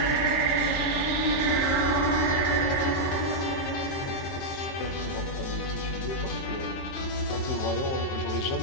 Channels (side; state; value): right; late; 22 ms